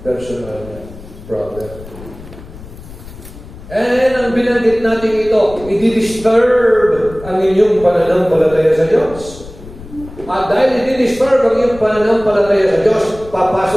personal problem. And ang binanggit natin ito, i-disturb ang inyong pananampalataya sa Diyos. At dahil i-disturb ang inyong pananampalataya sa Diyos,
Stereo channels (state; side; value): noise; left; rumble, 16 dB below the sound